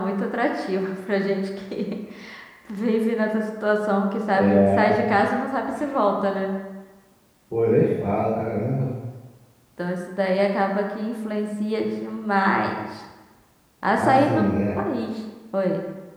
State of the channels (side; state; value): both; identical; correlation 1.00